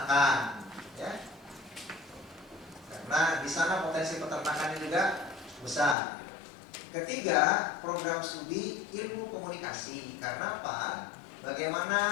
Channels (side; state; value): right; drops out; at 6.0 s